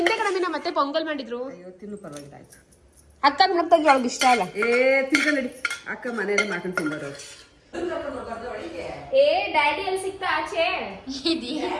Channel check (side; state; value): both; identical; correlation 1.00